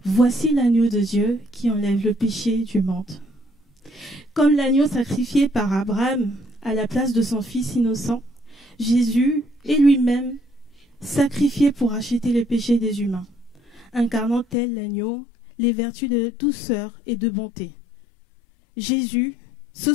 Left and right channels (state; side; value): drops out; right; at 14.6 s